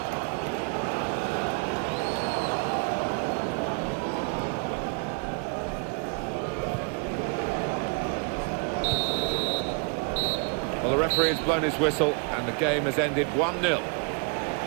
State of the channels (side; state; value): left; quieter; 35.2 dB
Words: Well, the referee has blown his whistle and the game has ended 1-0.